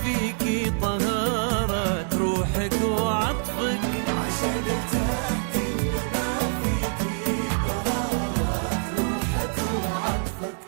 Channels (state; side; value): silent; left; digital silence